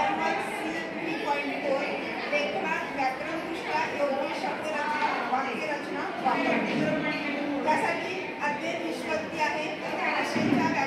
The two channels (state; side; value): identical; both; correlation 1.00